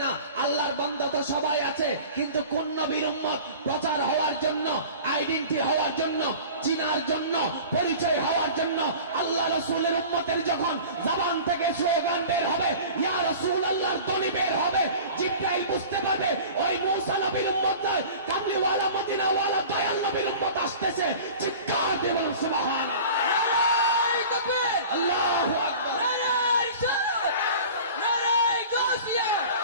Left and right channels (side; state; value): both; inverted; correlation -0.40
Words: না। আল্লাহর বান্দা তো সবাই আছে, কিন্তু কোন নবীর উম্মত প্রচার হওয়ার জন্য, আইডেন্টি হওয়ার জন্য, চিনার জন্য, পরিচয় হওয়ার জন্য আল্লাহ রাসূলের উম্মতের যখন জবান থেকে স্লোগান বের হবে, ইয়া রাসূলুল্লাহর ধ্বনি বের হবে, জিবরাইল বুঝতে পারবে ওই মুসা নবীর উম্মত নয়, কামলিওয়ালা মদিনাওয়ালা দয়াল নবীর উম্মত আসতেছে। চিৎকার দিয়ে বলুন সুবহানাল্লাহ, নারে তাকবীর, আল্লাহু আকবার, নারে রিসালাত, নারে গাসিয়া,